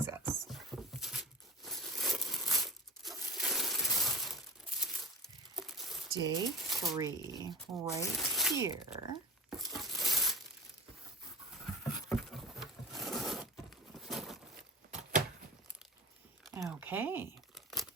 us. Day 3, right here. Okay,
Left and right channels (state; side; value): normal; both; correlation 0.37